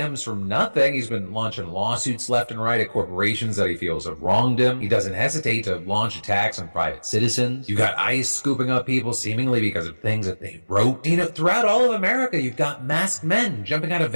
from nothing. He's been launching lawsuits left and right at corporations that he feels have wronged him. He doesn't hesitate to launch attacks on private citizens. You've got ICE scooping up people seemingly because of things that they wrote. Throughout all of America, you've got masked men jumping out of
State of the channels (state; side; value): inverted; both; correlation -1.00